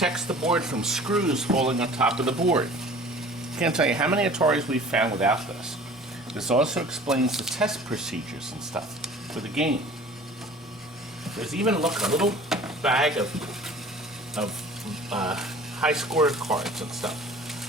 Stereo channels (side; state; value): both; normal; correlation 0.46